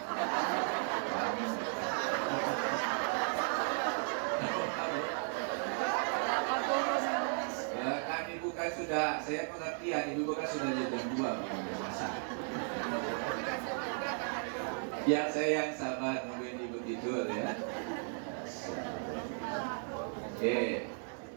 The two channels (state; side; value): silent; left; 54 dB below the other